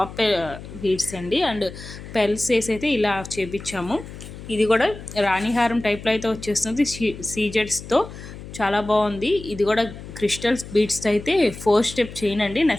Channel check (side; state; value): left; noise; hum, 13 dB below the sound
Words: బీడ్స్ అండి. అండ్ పెల్స్ వేసి అయితే ఇలా చేపించాము. ఇది కూడా రాణిహారం టైప్లో అయితే వచ్చేస్తుంది సీజెడ్స్తో. చాలా బాగుంది. ఇది కూడా క్రిస్టల్స్ బీడ్స్తో అయితే 4 స్టెప్ చైన్ అండి.